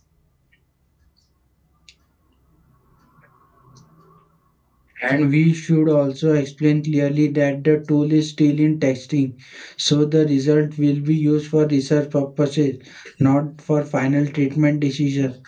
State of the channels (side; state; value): both; identical; correlation 1.00